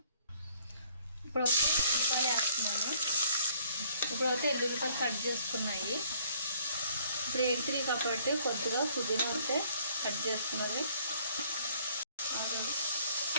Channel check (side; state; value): both; inverted; correlation -0.61